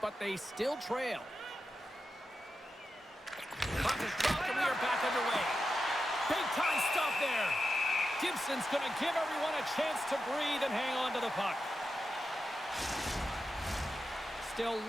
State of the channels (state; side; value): normal; both; correlation 0.90